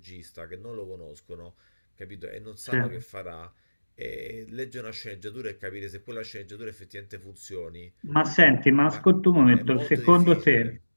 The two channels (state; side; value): inverted; both; correlation -1.00